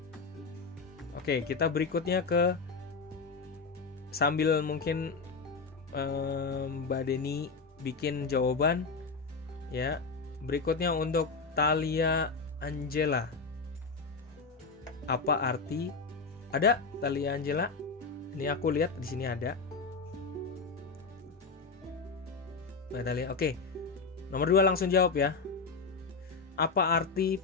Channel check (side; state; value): right; quieter; 4.5 dB